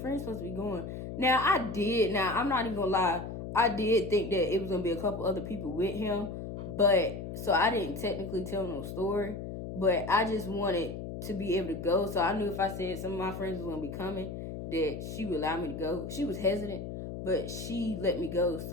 friends supposed to be going. Now I did. Now I'm not even gonna lie. I did think that it was gonna be a couple other people with him, but so I didn't technically tell no story. But I just wanted to be able to go. So I knew if I said some of my friends was gonna be coming, that she would allow me to go. She was hesitant, but she let me go.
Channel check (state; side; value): noise; left; hum, 7 dB below the sound